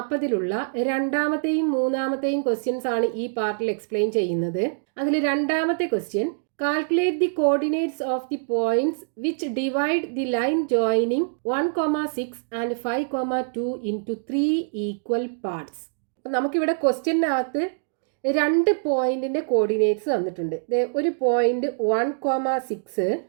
രണ്ടാമത്തെയും മൂന്നാമത്തെയും ക്വസ്റ്റ്യൻസ് ആണ് ഈ പാർട്ടിൽ എക്സ്പ്ലെയിൻ ചെയ്യുന്നത്. അതിൽ രണ്ടാമത്തെ question, calculate the coordinates of the points which divide the line joining 1,6 and 5,2 into 3 equal parts. നമുക്കിവിടെ ക്വസ്റ്റ്യനകത്ത് രണ്ട് പോയിന്റിന്റെ കോർഡിനേറ്റ്സ് തന്നിട്ടുണ്ട്. ഒരു പോയിന്റ് 1,6,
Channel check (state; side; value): silent; left; digital silence